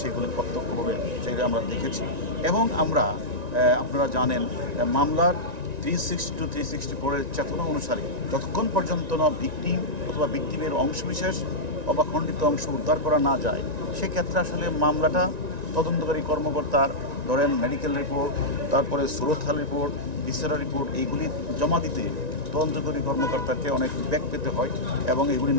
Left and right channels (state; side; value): late; left; 1.9 ms